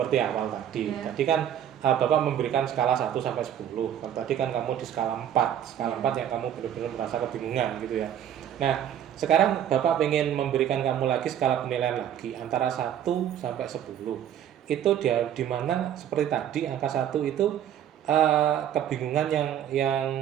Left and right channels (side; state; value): left; quieter; 10.2 dB